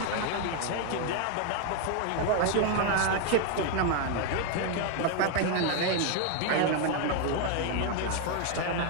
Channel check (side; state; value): both; different; correlation 0.01